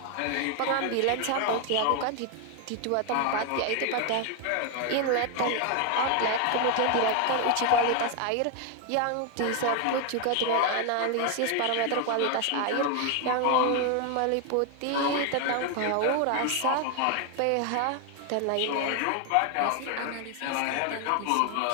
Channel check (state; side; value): different; both; correlation 0.01